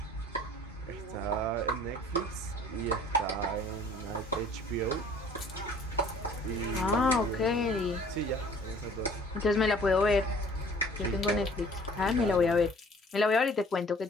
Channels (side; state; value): both; normal; correlation 0.52